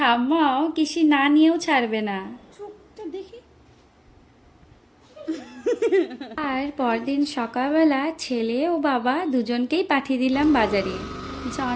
কিসি না নিয়েও ছাড়বে না। আর পরদিন সকালবেলা ছেলে ও বাবা দুজনকেই পাঠিয়ে দিলাম বাজারে।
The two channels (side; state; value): both; identical; correlation 1.00